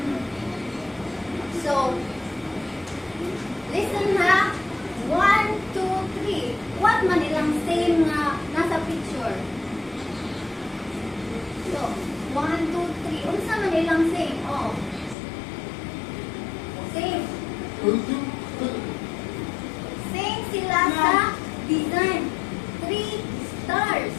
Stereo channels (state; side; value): drops out; right; at 15.2 s